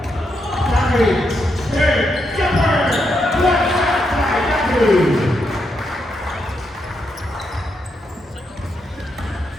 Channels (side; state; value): both; normal; correlation 0.81